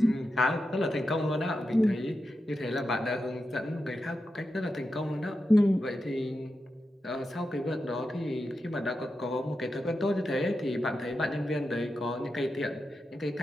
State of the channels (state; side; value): normal; both; correlation 0.89